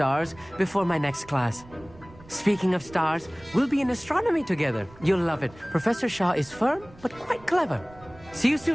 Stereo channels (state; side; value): noise; right; rumble, 22 dB below the sound